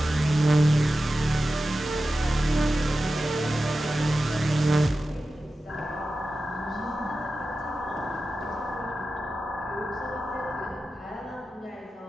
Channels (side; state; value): both; normal; correlation 0.93